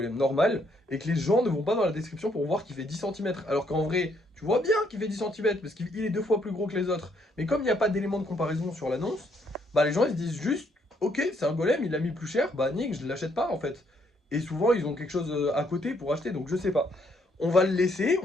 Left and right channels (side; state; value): both; normal; correlation 0.71